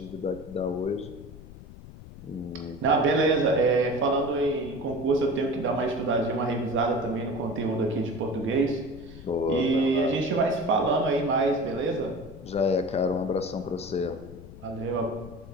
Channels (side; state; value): left; noise; rumble, 16 dB below the sound